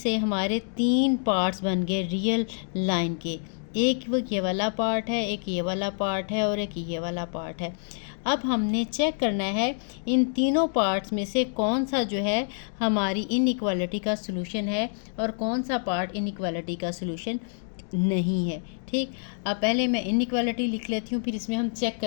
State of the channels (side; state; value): right; silent; digital silence